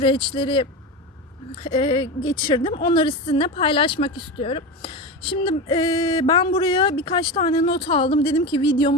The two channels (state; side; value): normal; both; correlation 0.22